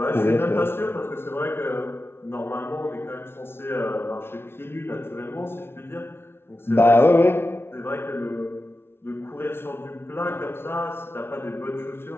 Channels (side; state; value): right; late; 0.12 ms